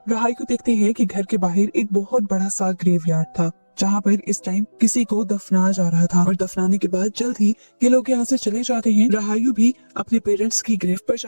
रहायू देखते हैं कि घर के बाहर एक बहुत बड़ा सा ग्रेवयार्ड था जहाँ पर इस टाइम किसी को दफनाया जा रहा था। और दफनाने के बाद जल्द ही ये लोग यहाँ से चले जाते हैं। राहायु भी अपने पेरेंट्स की ग्रेव पर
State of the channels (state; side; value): inverted; both; correlation -1.00